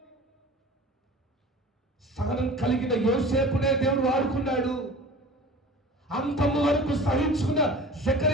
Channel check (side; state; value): both; normal; correlation 0.40